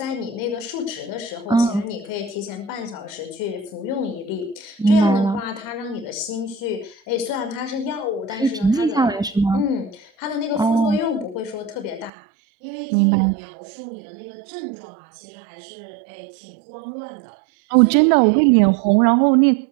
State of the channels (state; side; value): drops out; left; at 12.1 s